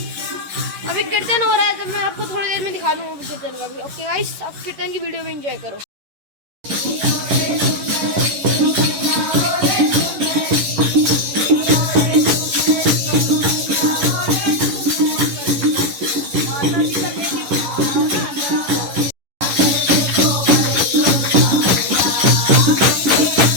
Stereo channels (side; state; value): left; late; 11 ms